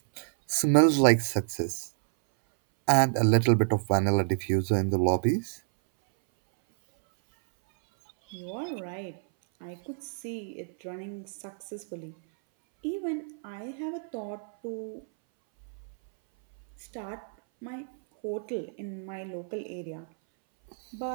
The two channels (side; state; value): left; silent; 59 dB below the other